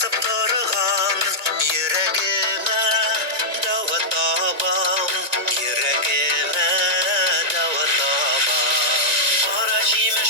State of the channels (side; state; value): left; late; 2.2 ms